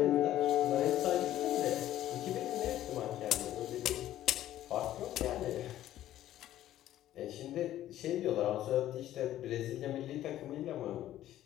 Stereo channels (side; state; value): right; quieter; 13.1 dB